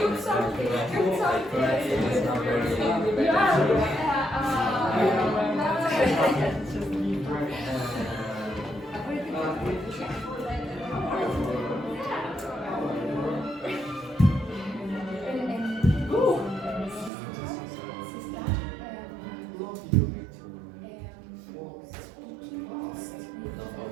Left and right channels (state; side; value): drops out; left; at 17.1 s